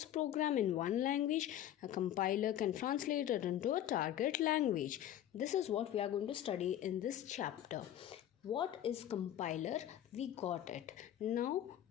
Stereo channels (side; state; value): right; quieter; 11.6 dB